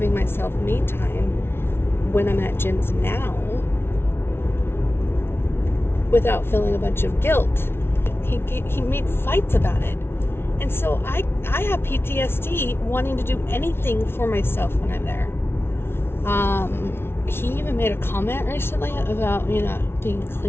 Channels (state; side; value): late; right; 0.12 ms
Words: myself me time when I'm at Jim's now without feeling a bunch of guilt. He made fights about it. And so I have PTSD wanting to do anything for myself when I'm there. He even made a comment recently about me not being